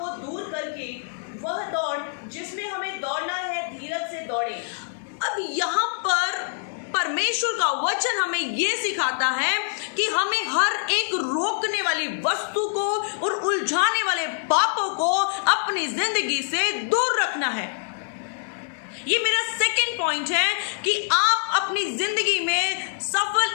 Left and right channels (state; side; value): silent; right; digital silence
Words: दूर करके वह दौड़ जिसमें हमें दौड़ना है, धीरज से दौड़े। अब यहाँ पर परमेश्वर का वचन हमें यह सिखाता है कि हमें हर एक रोकने वाली वस्तु को और उलझाने वाले पापों को अपनी जिंदगी से दूर रखना है। ये मेरा सेकंड पॉइंट है कि आप अपनी जिंदगी में